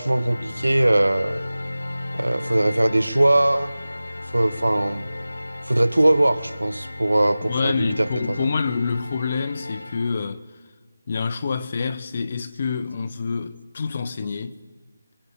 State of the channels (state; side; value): inverted; both; correlation -0.95